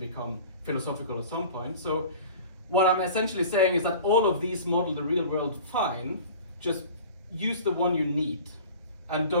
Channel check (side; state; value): both; inverted; correlation -0.41